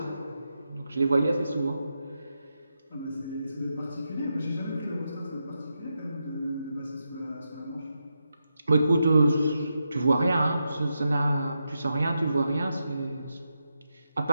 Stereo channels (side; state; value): both; inverted; correlation -0.86